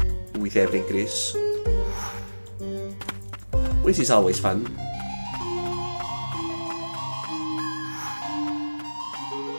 with every increase, which is always fun.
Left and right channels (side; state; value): both; inverted; correlation -1.00